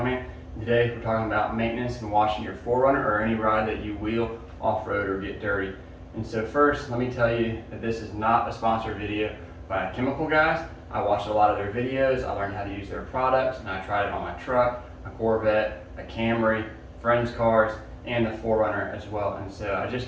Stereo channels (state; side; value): identical; both; correlation 1.00